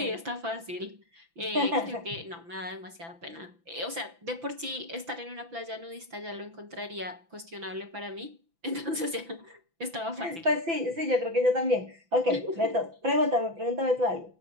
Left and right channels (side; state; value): left; late; 5.9 ms